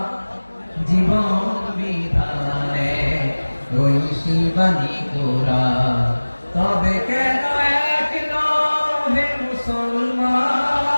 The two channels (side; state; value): both; inverted; correlation -1.00